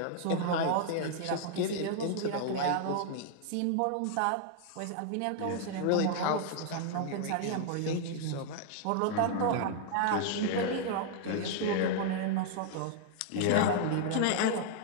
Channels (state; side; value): different; both; correlation 0.00